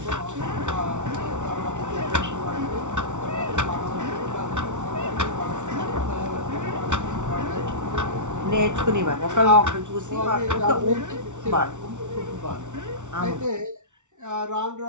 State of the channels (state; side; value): late; left; 0.85 ms